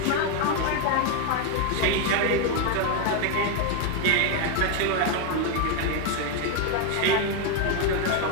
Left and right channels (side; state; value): both; different; correlation 0.01